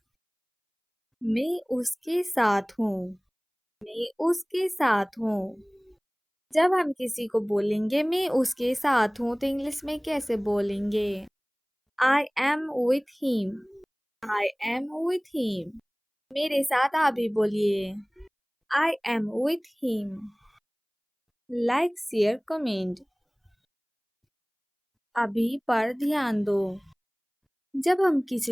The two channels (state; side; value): identical; both; correlation 1.00